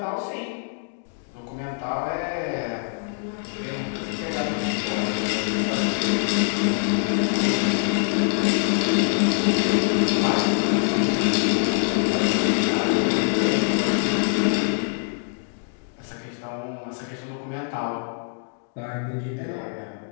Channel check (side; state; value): right; silent; 62 dB below the other